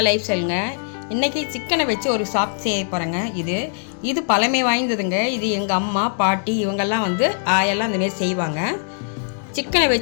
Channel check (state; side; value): silent; right; digital silence